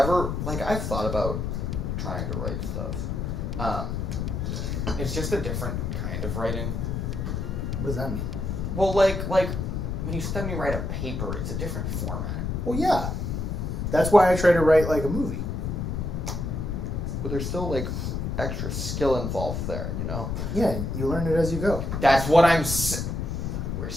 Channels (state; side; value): noise; left; rumble, 2 dB below the sound